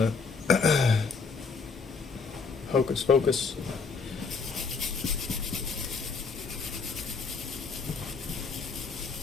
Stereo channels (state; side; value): quieter; right; 4.9 dB